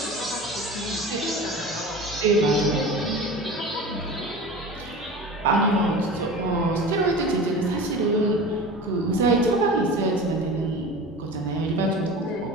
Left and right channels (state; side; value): normal; both; correlation 0.34